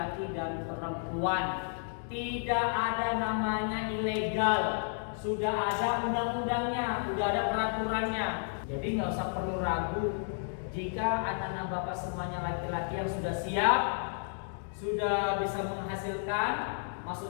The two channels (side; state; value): right; silent; digital silence